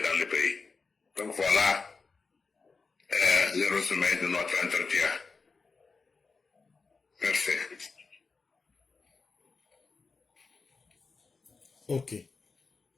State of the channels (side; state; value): right; quieter; 4.4 dB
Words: dans le pays. Donc voilà le résumé de notre entretien. Merci. Ok.